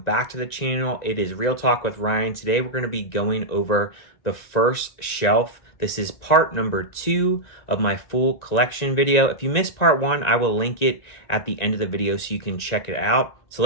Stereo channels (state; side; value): late; right; 1.9 ms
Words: to the channel. It is Real Talk with Ryan. Today we're going to be going over the first shelf. This is part number 2 of my full collection video. If you missed part 1, I will link it at the end of the video so you can check it out. So